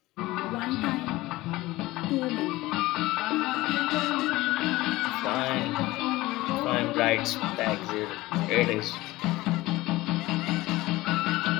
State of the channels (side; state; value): right; quieter; 18.9 dB